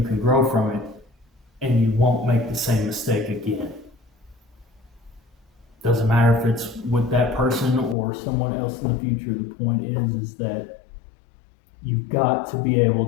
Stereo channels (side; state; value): right; drops out; at 8.0 s